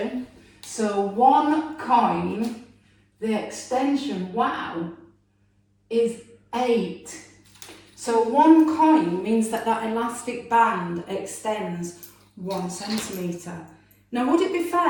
So one coin, the extension, wow, is 8. So one coin means that that elastic band extends 1 centimetre. Now, would it be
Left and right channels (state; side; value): identical; both; correlation 1.00